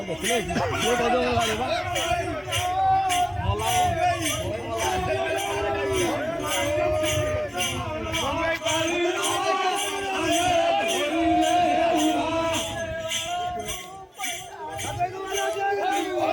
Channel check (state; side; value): identical; both; correlation 1.00